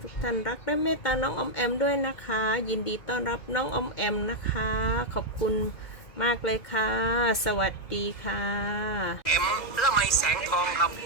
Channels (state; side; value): late; right; 2.1 ms